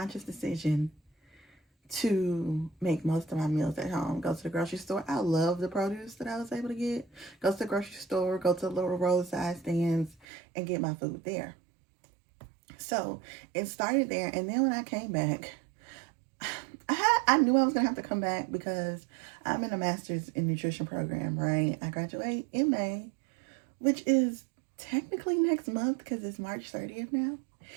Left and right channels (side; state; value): left; drops out; at 10.2 s